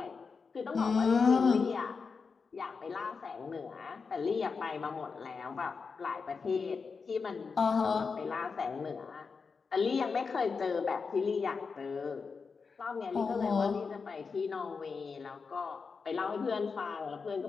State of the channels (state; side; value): quieter; right; 5.1 dB